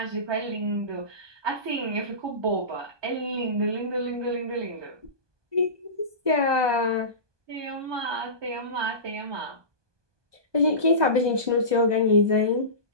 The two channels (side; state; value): left; late; 1.2 ms